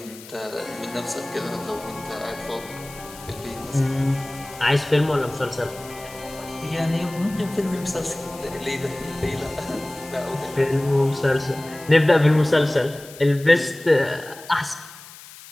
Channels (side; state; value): left; noise; hiss, 18 dB below the sound